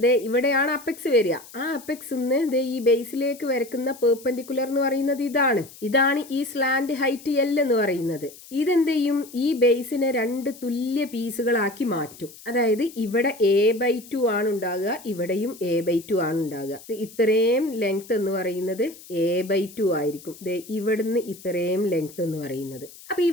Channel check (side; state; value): left; noise; hiss, 19 dB below the sound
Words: ഇവിടെയാണ് അപ്പെക്സ് വരിക. ആ അപ്പെക്സ് ഈ ബേസിലേക്ക് വരക്കുന്ന പെർപെൻഡിക്കുലർ എന്ന് പറയുന്നത് ഇതാണ് ഈ സ്ലാന്റ് ഹൈറ്റ് L എന്ന് പറയുന്നത്. ഇതെന്ത് ചെയ്യും? ഈ ബേസിനെ 2 തുല്യ പീസുകളാക്കി മാറ്റും. അതായത് ഇവിടെ A/2 ആണ് ഉണ്ടാകുക, ഇവിടെയും A/2 ആണ് ഉണ്ടാകുക. ഇത്രയും ലെങ്ത് എന്ന് പറയുന്നത് A/2 ആയിരിക്കും. ഇവിടുന്ന് ഇത്രയും ലെങ്ത് എന്ന് പറയുന്നത്. അപ്പൊ